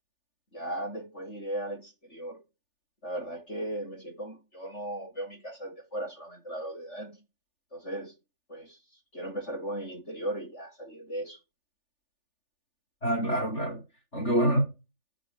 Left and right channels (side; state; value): right; late; 3.4 ms